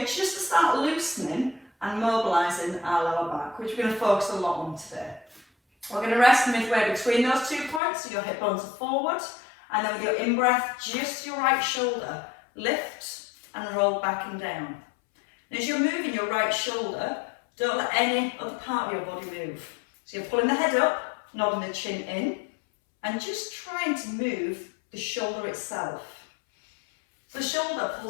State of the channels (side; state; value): right; drops out; at 7.8 s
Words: just to start loosening and mobilising our lower back, which we're going to focus a lot on today. We're going to rest midway between those 2 points, so your hip bones are forward, and then with your in-breath, just your right shoulder, lift and roll back and down. And as you're moving your right shoulder, don't let any other part of your body move. So you're pulling the head up, nodding the chin in, and just trying to move the shoulder itself. So the shoulder